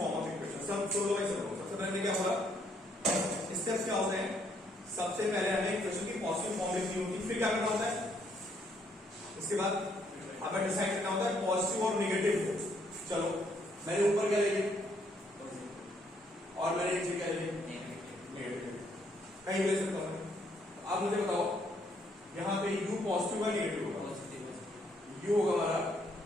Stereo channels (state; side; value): normal; both; correlation 0.70